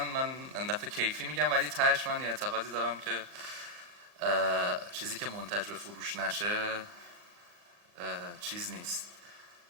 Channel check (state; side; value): late; left; 40 ms